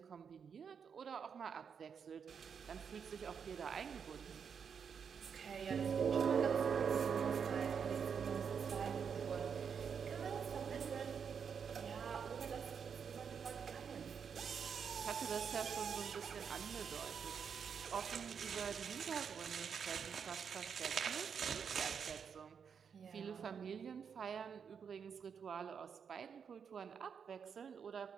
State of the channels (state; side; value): quieter; left; 6.8 dB